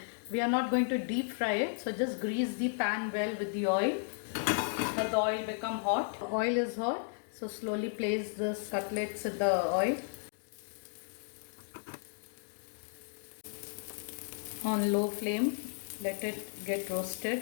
We are not going to deep fry it, so just grease the pan well with the oil. Let the oil become hot. Oil is hot, so slowly place this cutlets in the oil. On low flame, let it get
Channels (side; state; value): right; silent; digital silence